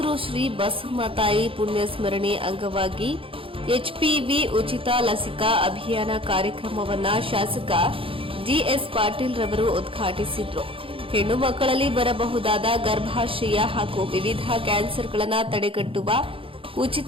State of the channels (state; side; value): late; left; 0.26 ms